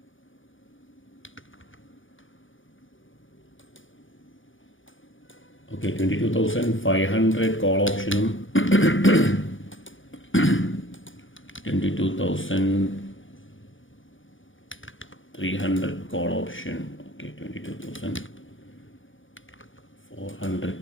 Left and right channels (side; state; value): right; late; 0.57 ms